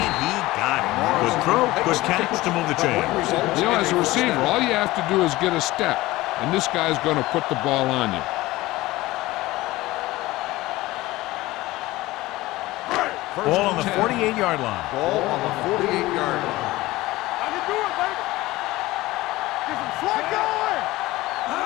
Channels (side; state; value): right; quieter; 18.6 dB